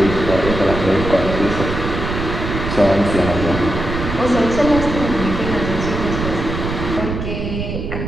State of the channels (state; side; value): noise; right; rumble, 5 dB below the sound